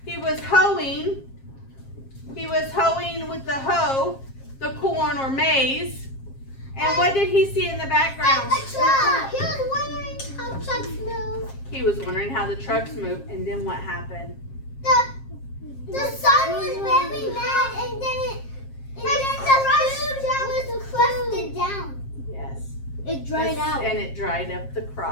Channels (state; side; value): late; right; 7.5 ms